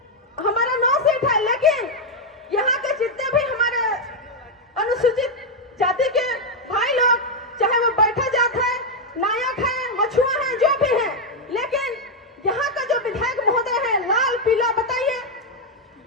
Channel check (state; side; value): normal; both; correlation 0.01